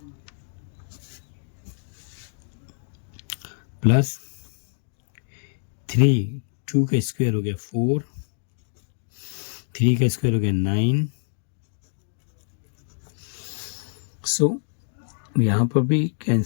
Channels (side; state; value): right; silent; 58 dB below the other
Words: प्लस 3, 2 का स्क्वायर हो गया 4, 3 का स्क्वायर हो गया 9। सो यहाँ पर भी